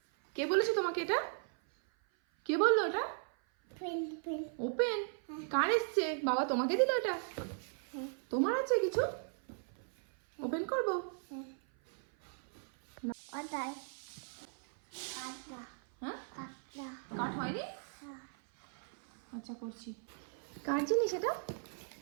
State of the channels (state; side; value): silent; left; 53 dB below the other